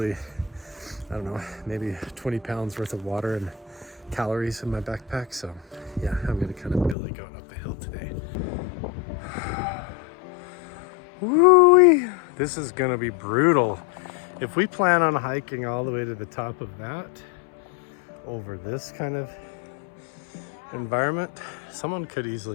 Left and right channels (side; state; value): right; drops out; at 7.0 s